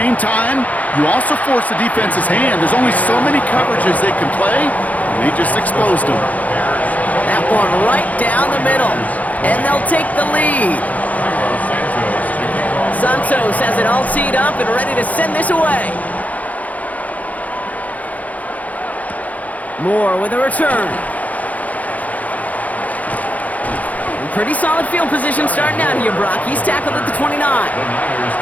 time, you also force the defense's hand. There's only so many coverages they can play, and they just exposed them. That one right down the middle, and they'll take the lead. Santos has it all teed up and ready to send this away. Moore with a return. Pretty solid field position starting out here, Brock. He's tackled at the 29. The Niners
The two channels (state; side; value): late; right; 0.074 ms